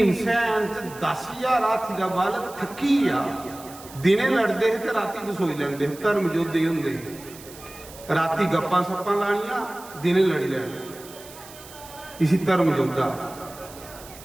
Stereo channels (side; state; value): right; noise; hiss, 18 dB below the sound